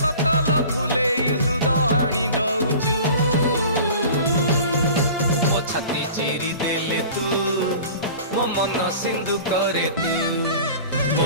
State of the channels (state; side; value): inverted; both; correlation -0.41